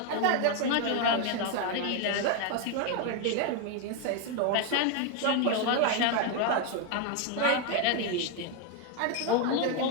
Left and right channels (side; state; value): both; different; correlation 0.01